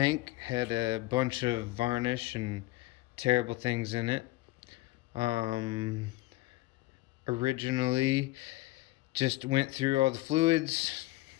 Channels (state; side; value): quieter; right; 18.6 dB